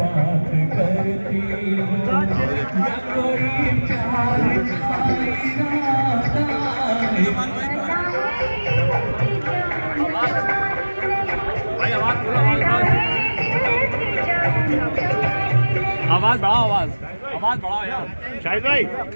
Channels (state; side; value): inverted; both; correlation -1.00